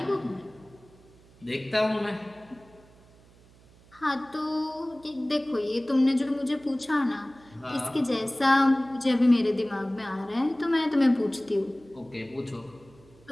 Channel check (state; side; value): noise; right; hum, 26 dB below the sound